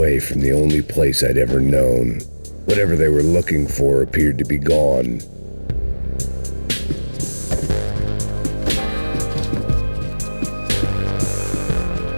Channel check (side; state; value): both; inverted; correlation -1.00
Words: from the only place I'd ever known. Whatever they were looking for appeared to be gone.